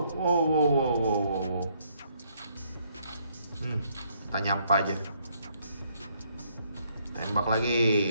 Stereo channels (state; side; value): inverted; both; correlation -0.70